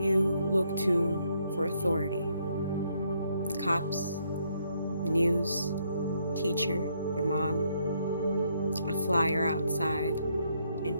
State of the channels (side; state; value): both; inverted; correlation -0.73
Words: you look to for authority. Cops, the news, teacher, your mom, a flyer outside, an